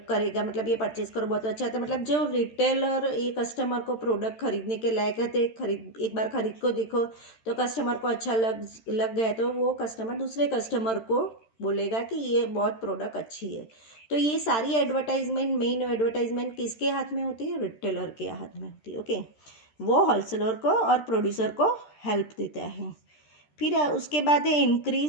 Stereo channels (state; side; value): late; right; 13 ms